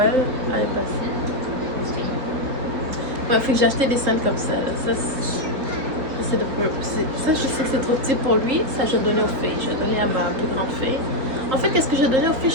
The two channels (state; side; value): late; left; 3.8 ms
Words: l'année passée. Ouais, fait que j'ai acheté des scènes comme ça. Là. Ça je sais que c'est trop petit pour lui. Ça je vais donner aux filles. Je vais donner à ma plus grande fille. En fait, qu'est-ce que je vais donner aux filles?